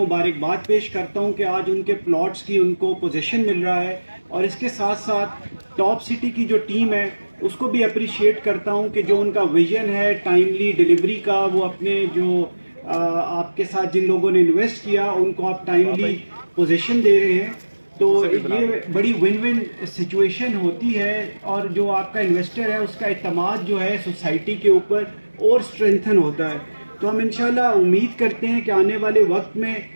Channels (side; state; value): both; inverted; correlation -1.00